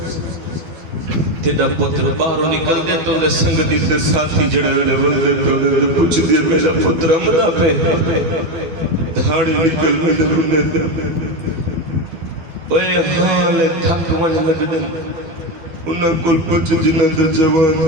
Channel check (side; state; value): left; late; 12 ms